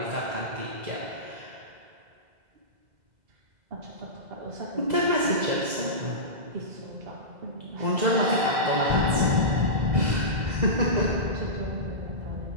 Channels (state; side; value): late; left; 2.0 ms